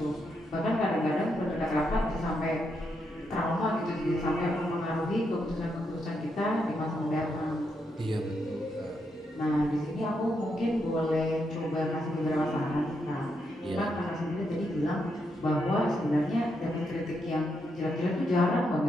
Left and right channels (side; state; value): both; normal; correlation 0.81